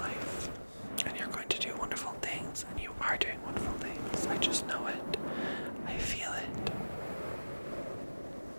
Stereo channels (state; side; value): inverted; both; correlation -1.00